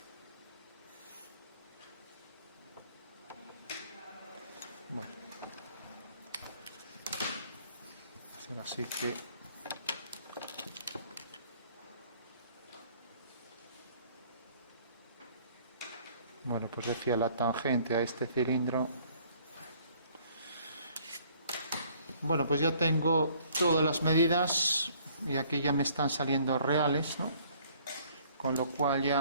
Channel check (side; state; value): both; inverted; correlation -0.59